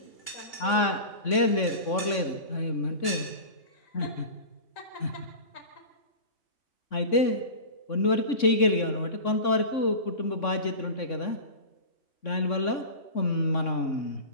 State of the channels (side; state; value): right; late; 3.6 ms